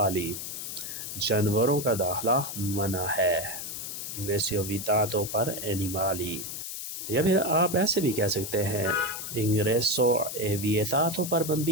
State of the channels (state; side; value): noise; left; hiss, 7 dB below the sound